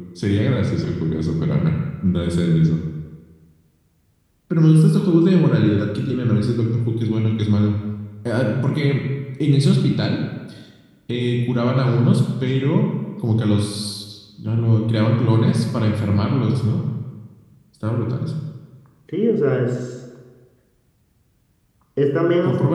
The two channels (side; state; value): both; identical; correlation 1.00